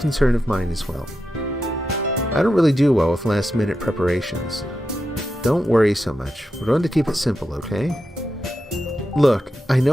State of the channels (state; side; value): normal; both; correlation 0.88